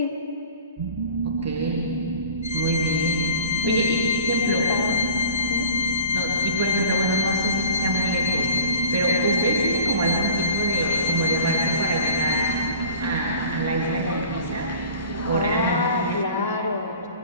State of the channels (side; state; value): both; inverted; correlation -0.45